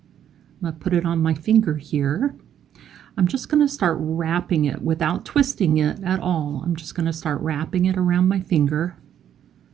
going to put it on my finger here. I'm just going to start wrapping it without twisting it at all. I'm just going to start wrapping it around my finger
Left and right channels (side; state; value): left; quieter; 9.9 dB